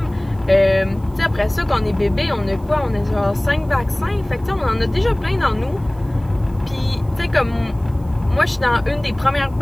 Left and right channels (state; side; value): noise; right; hiss, 30 dB below the sound